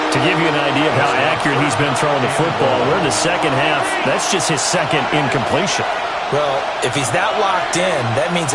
To give you an idea of how accurate he's been throwing the football, we're in the second half. That's just his 2nd incompletion. Well, if he's that locked in, that means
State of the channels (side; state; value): both; identical; correlation 1.00